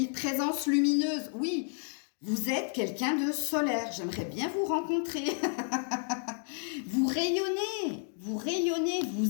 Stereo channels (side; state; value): right; silent; 57 dB below the other